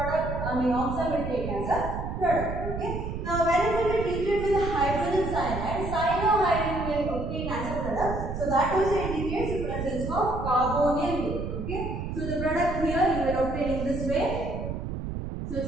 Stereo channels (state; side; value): noise; right; rumble, 5 dB below the sound